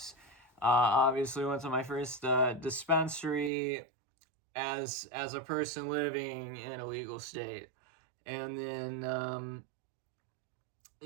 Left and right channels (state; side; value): drops out; left; at 3.5 s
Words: Obviously, went to my first dispensary as a person living in a legal state, and then